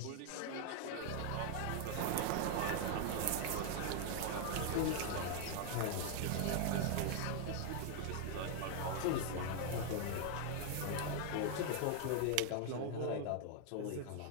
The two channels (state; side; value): different; both; correlation 0.00